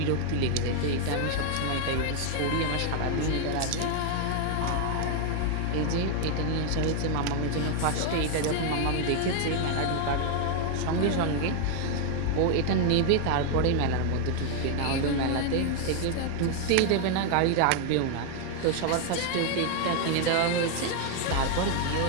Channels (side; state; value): both; different; correlation 0.00